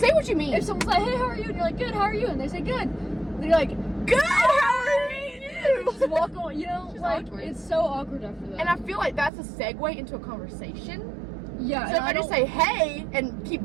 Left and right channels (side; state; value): left; drops out; at 9.3 s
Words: what you mean. If someone's like, hey, how are you? And you're like, good, how are you? And they say, good. And you're like, good, how are you? Just walk on, you know? It's like, awkward. It's so awkward after that. And I feel like that's a segue into a conversation. Yeah. So if I just say, hey, and